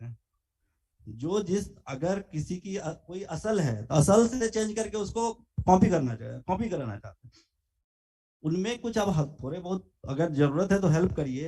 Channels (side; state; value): both; identical; correlation 1.00